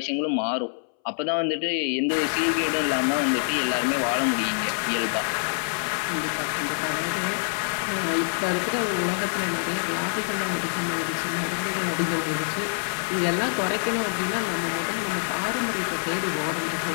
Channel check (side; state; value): right; silent; 61 dB below the other